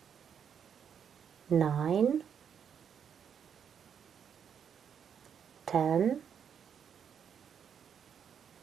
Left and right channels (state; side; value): quieter; left; 7.8 dB